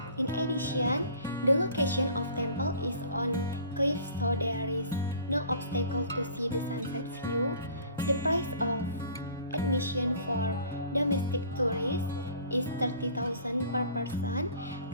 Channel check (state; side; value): inverted; both; correlation -0.48